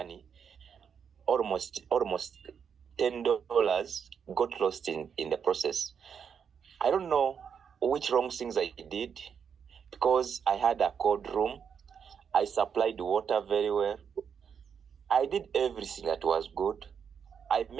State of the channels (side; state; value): left; quieter; 7.1 dB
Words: almost $10 got lost in the process. I don't know which wrong things I did, because I had a cold room. I supplied water very well. I did everything that was good. I